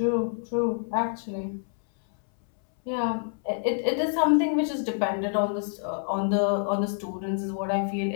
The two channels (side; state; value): right; silent; 60 dB below the other